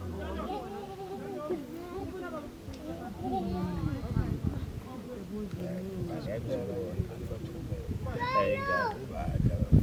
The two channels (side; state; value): both; identical; correlation 1.00